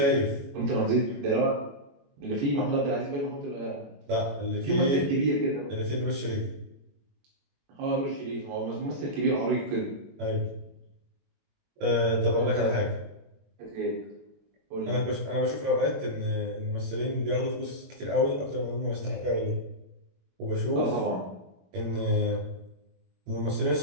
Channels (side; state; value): left; late; 21 ms